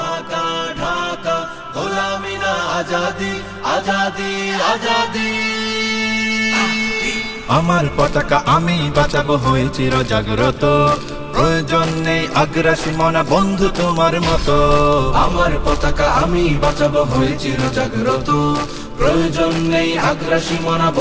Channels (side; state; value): both; identical; correlation 1.00